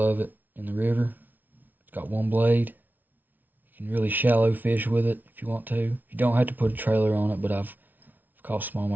it in the river. It's got one blade. You can really shallow fish with it if you want to. You don't have to put a trailer on it, but I've caught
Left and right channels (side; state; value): left; late; 0.084 ms